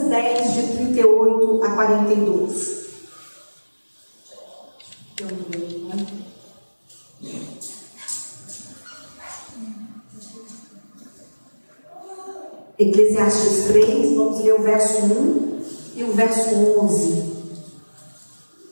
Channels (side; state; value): both; inverted; correlation -1.00